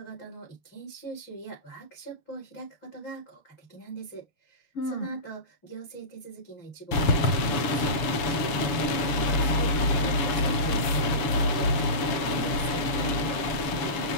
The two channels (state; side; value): late; right; 6.9 ms